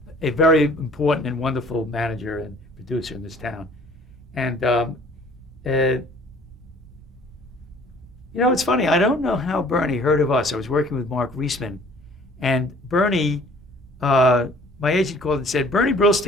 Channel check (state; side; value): normal; both; correlation 0.53